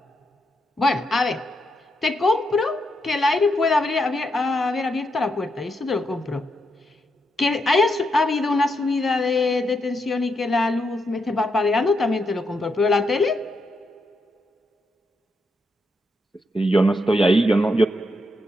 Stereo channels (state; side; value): normal; both; correlation 0.81